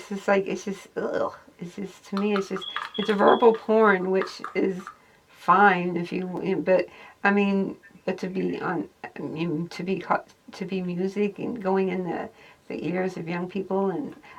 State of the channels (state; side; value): identical; both; correlation 1.00